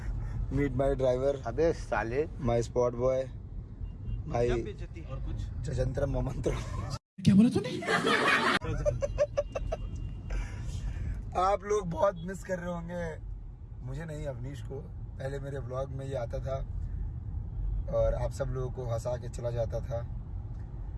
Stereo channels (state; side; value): identical; both; correlation 1.00